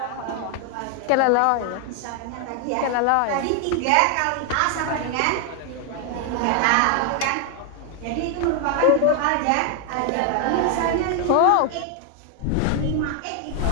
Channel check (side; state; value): both; different; correlation 0.00